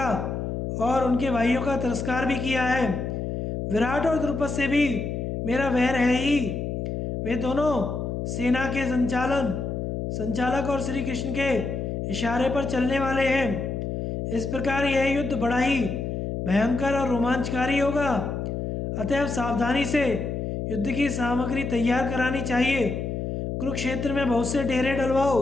और उनके भाइयों का तिरस्कार भी किया है। विराट और द्रुपद से भी मेरा वैर है ही। वे दोनों सेना के संचालक और श्री कृष्ण के इशारे पर चलने वाले हैं। इस प्रकार यह युद्ध बड़ा ही भयंकर और रोमांचकारी होगा। अतएव सावधानी से युद्ध की सामग्री तैयार करानी चाहिए। कुरुक्षेत्र में बहुत से डेरे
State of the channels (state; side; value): noise; left; hum, 3 dB below the sound